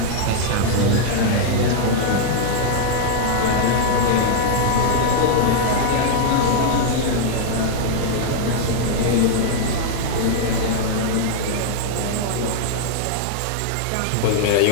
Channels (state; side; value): different; both; correlation -0.01